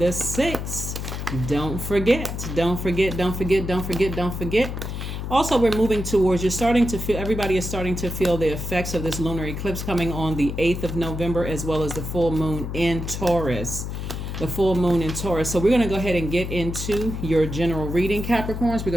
6th. Don't forget. Also, we're moving towards, everybody is starting to feel the effects of this lunar eclipse coming on the 8th of November, as well as the full moon in Taurus. So we're going to go ahead and get into your general reading, Capricorns. We're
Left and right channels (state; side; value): noise; left; hum, 5 dB below the sound